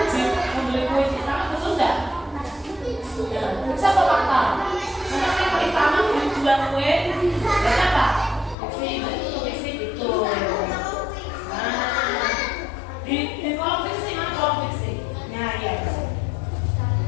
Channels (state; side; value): drops out; right; at 8.6 s